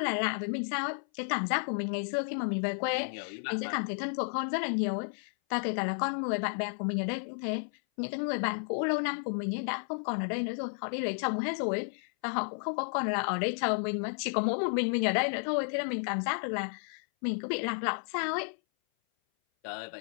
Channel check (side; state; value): right; silent; 56 dB below the other